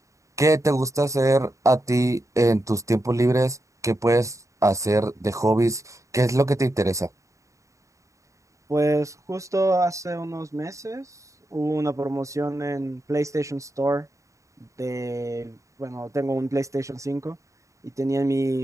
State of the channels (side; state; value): left; late; 0.15 ms